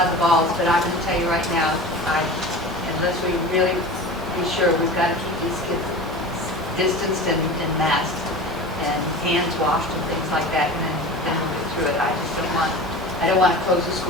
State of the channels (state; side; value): normal; both; correlation 0.34